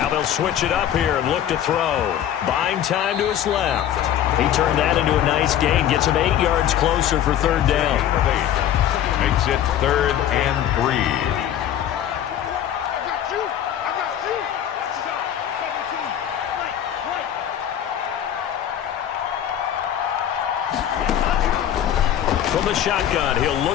they'll switch it up here and look to throw. Buying time to his left. He turned that into a nice gain. Gets him 8 yards closer for 3rd down. Makes it 3rd and 3. From the shotgun, he'll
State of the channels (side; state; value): right; quieter; 10.6 dB